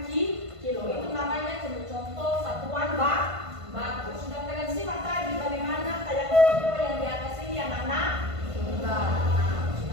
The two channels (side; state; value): left; late; 1.5 ms